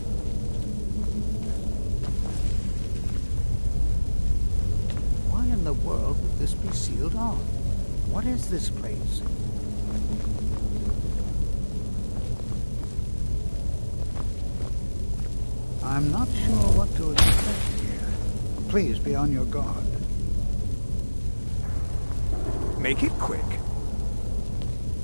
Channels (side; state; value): both; inverted; correlation -1.00